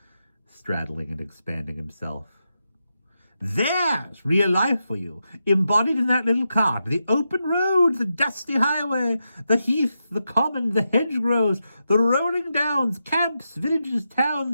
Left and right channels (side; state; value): both; inverted; correlation -0.87